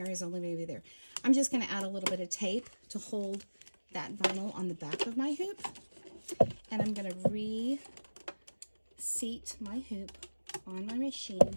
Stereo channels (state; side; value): inverted; both; correlation -1.00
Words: only maybe there, I'm just going to add a little bit of tape to hold that vinyl on the back of my hoop. And I'm going to reseat my hoop on my